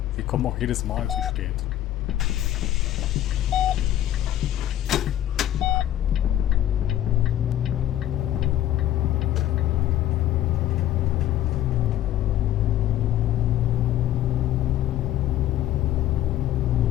Wir kommen auch jedes Mal zu spät.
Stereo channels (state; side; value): quieter; right; 12.7 dB